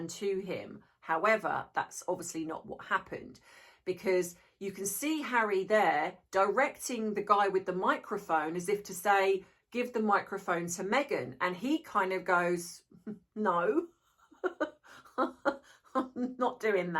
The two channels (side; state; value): both; identical; correlation 1.00